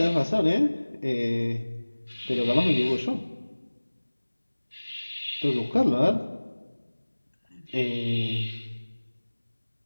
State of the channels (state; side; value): inverted; both; correlation -1.00